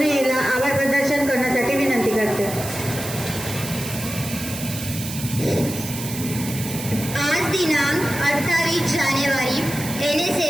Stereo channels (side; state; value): right; noise; hiss, 9 dB below the sound